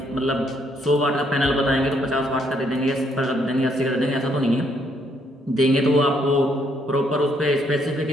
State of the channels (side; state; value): both; normal; correlation 0.71